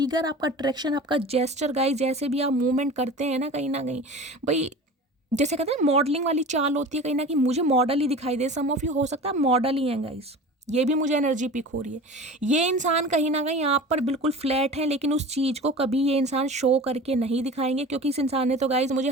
आपका अट्रैक्शन, आपका जेस्चर गाइस, जैसे भी आप मूवमेंट करते हैं ना कहीं भाई, जैसे कहते हैं मॉडलिंग वाली चाल होती है, कहीं ना कहीं मुझे मॉडल ही दिखाई दे। सम ऑफ यू हो सकता है मॉडल ही हैं गाइस, ये भी मुझे एनर्जी पिक हो रही है। ये इंसान कहीं ना कहीं आप पर बिल्कुल फ्लैट है, लेकिन उस चीज़ को कभी ये इंसान शो करके नहीं दिखाएंगे, क्योंकि इस इंसान ने तो गाइज मुझे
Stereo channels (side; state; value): both; normal; correlation 0.36